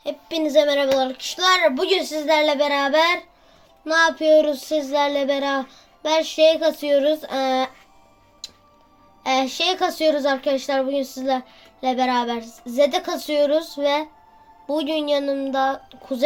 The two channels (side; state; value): both; identical; correlation 1.00